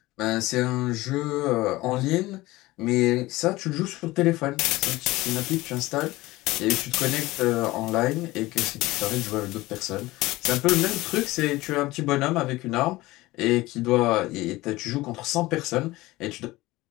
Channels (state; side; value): quieter; right; 19.2 dB